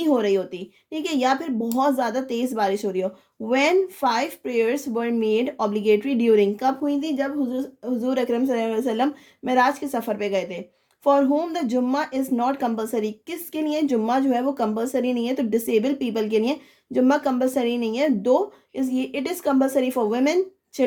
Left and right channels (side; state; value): both; identical; correlation 1.00